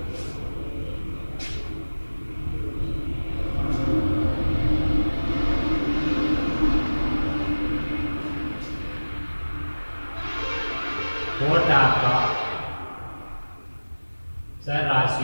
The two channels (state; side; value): inverted; both; correlation -1.00